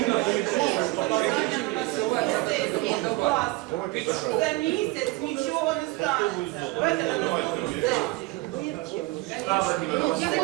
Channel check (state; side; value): quieter; left; 21.0 dB